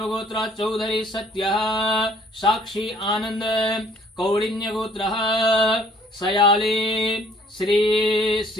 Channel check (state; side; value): normal; both; correlation 0.59